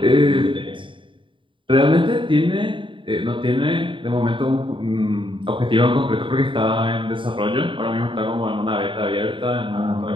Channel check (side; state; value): left; late; 0.24 ms